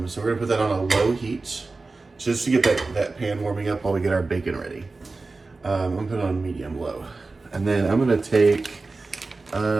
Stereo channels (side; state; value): left; quieter; 3.7 dB